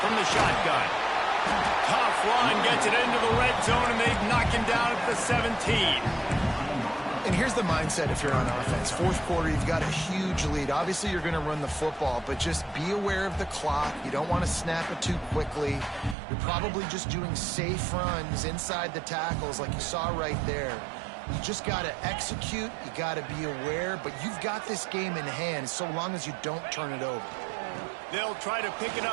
from the shotgun. Tough run, gets it into the red zone, and they knock him down at the 17. And here's the mindset if you're on offense. 4th quarter, you've got a huge lead. Obviously, you're going to run the football, but just be aware of the clock. You don't want to snap it too quickly. You're probably just doing safe runs inside the tackles like you saw right there. You just got to execute. You got to be aware, but you've got this game in hand so long as you don't turn it over. They'll try to pick it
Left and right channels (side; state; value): left; drops out; at 16.2 s